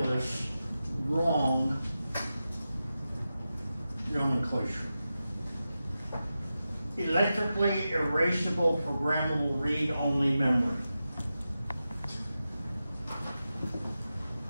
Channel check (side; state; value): both; inverted; correlation -0.92